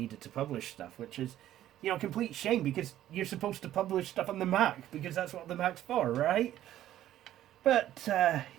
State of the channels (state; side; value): quieter; left; 12.7 dB